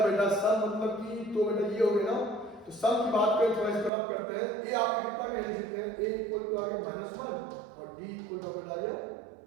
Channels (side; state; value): left; drops out; at 3.9 s